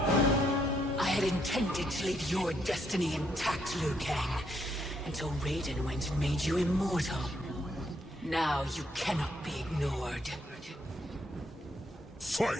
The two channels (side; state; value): both; normal; correlation 0.74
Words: I had intended to leave your destiny intact, Liu Kang, until Raiden went and made you immortal. Now you cannot be ignored.